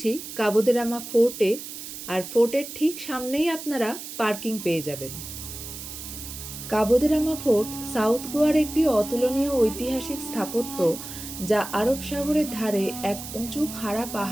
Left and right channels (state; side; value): noise; right; hiss, 10 dB below the sound